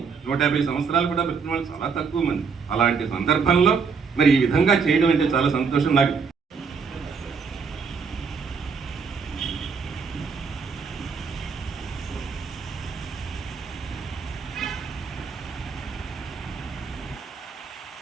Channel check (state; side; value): quieter; left; 5.6 dB